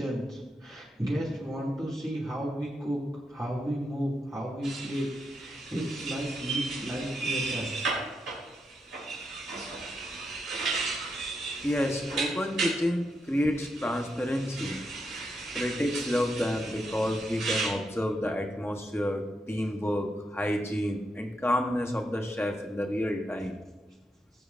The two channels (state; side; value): normal; both; correlation 0.83